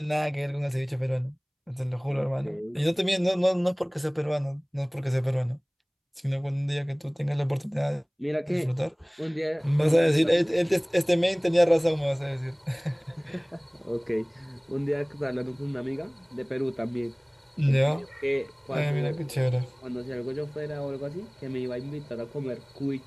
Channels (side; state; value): both; identical; correlation 1.00